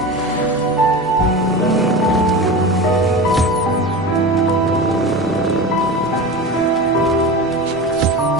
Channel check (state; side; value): normal; both; correlation 0.29